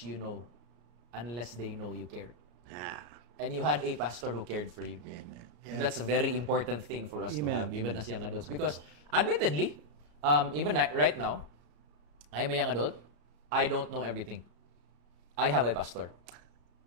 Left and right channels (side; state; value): left; late; 34 ms